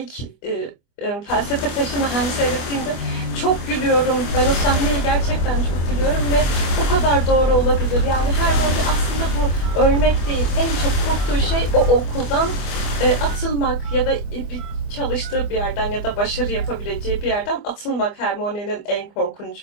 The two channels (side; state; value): right; late; 25 ms